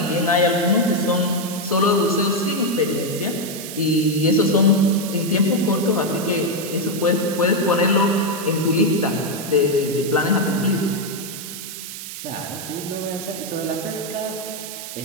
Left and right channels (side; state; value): right; noise; hiss, 10 dB below the sound